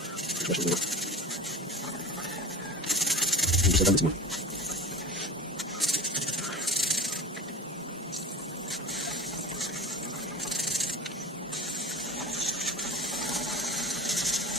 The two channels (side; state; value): both; normal; correlation 0.30